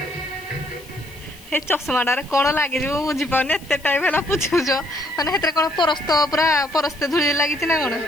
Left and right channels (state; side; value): noise; left; hiss, 22 dB below the sound